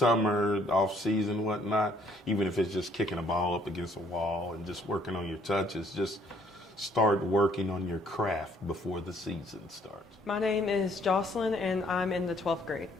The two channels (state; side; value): normal; both; correlation 0.64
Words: off season, whatnot, even if it's just kicking a ball up against a wall and just working on your touches, just start working on your craft before the season starts. My name is Jocelyn and I'm in the 12th grade.